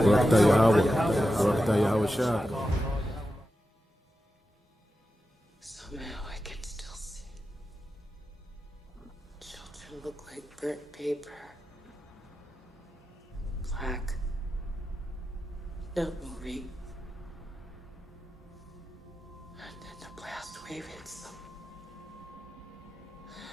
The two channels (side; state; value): both; normal; correlation 0.90